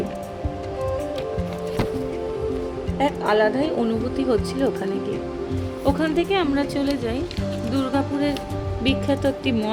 এক আলাদাই অনুভূতি হচ্ছিল ওখানে গিয়ে। ওখান থেকে আমরা চলে যাই দুর্গাপুরের বিখ্যাত একটি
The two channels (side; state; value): both; identical; correlation 1.00